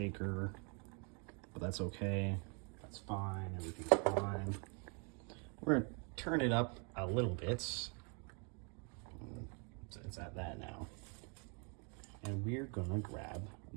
but that's okay. That's fine, everything's fine. We're gonna turn it up a little bit. So it's at that now. And we're gonna grab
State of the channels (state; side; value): quieter; left; 36.1 dB